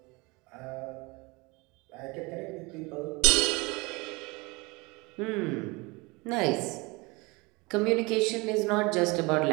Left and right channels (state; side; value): quieter; left; 25.7 dB